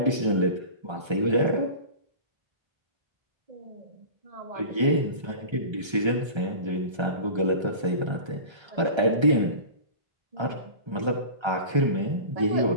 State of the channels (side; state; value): left; late; 1.3 ms